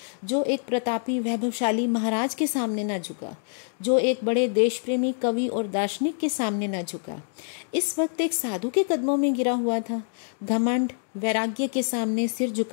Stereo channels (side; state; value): right; silent; digital silence